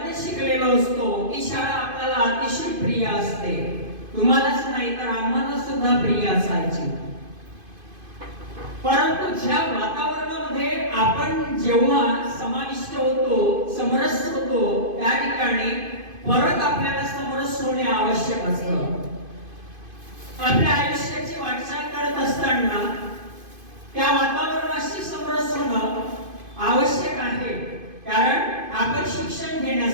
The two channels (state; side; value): late; left; 2.5 ms